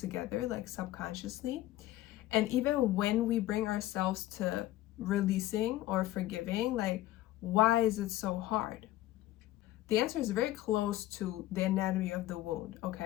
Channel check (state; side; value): quieter; right; 15.4 dB